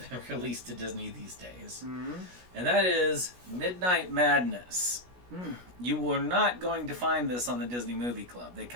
been released to Disney these days. And that is Midnight Madness. You were not going to find this on the Disney Movie Club. They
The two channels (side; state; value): left; late; 16 ms